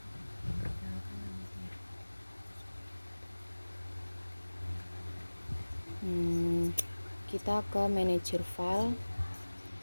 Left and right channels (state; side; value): inverted; both; correlation -1.00